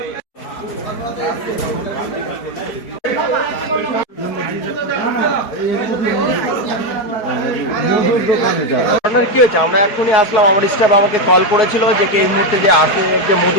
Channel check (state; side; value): late; right; 4.5 ms